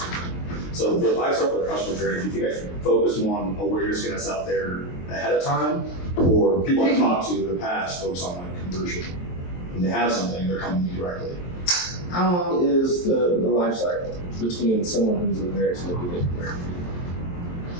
of thing. So for the lifestyle or customer journey, do you think I should focus more on awareness getting us out there ahead of time, or people I've talked to in the past focus on like conversion? When they have something, they're coming to me directly. How long is the life cycle between someone who's aware to maybe they convert?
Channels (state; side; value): late; right; 23 ms